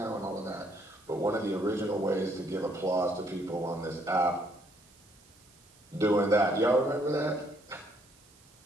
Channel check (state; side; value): noise; right; hiss, 27 dB below the sound